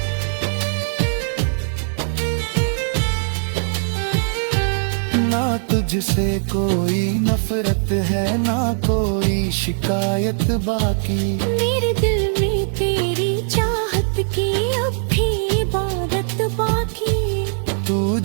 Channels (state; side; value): silent; left; 65 dB below the other